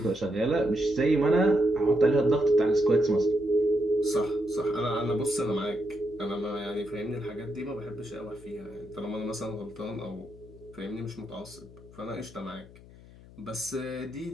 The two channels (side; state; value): left; noise; hum, 21 dB below the sound